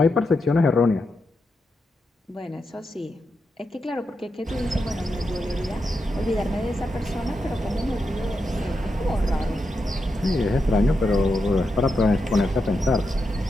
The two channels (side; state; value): both; normal; correlation 0.86